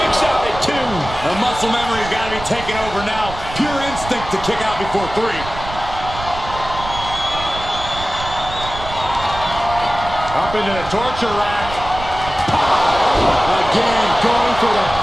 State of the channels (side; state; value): right; noise; rumble, 11 dB below the sound